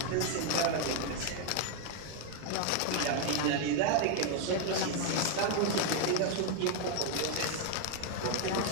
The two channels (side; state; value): both; different; correlation 0.01